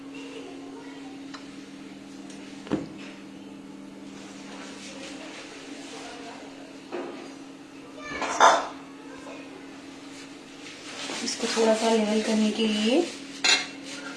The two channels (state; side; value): identical; both; correlation 1.00